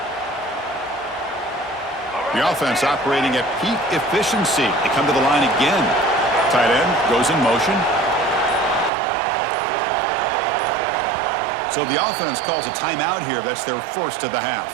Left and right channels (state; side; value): drops out; left; at 8.9 s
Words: The offense operating at peak efficiency. They come to the line again. Tight end goes in motion. So the offense calls a timeout here. That's their first of the half.